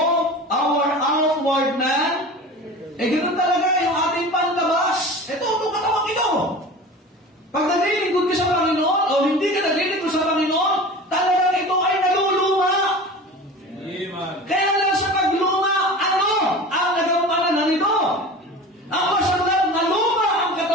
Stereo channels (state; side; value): normal; both; correlation 0.36